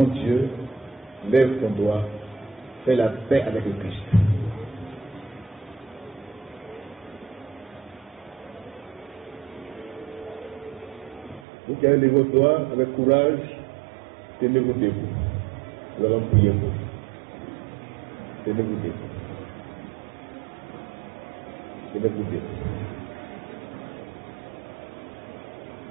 Dieu, lève ton doigt. Fais la paix avec le Christ. Vous qui avez levé vos doigts avec courage, tenez-vous debout. Nous allons prier pour vous. Tenez-vous debout. Tenez-vous debout.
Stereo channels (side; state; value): left; drops out; at 11.5 s